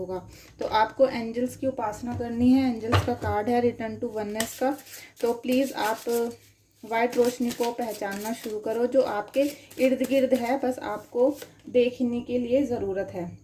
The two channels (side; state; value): both; identical; correlation 1.00